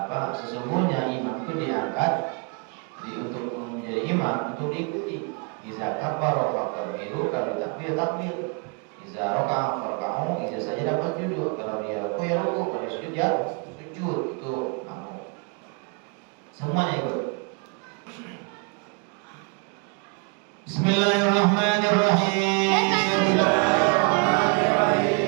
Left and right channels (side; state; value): left; quieter; 35.1 dB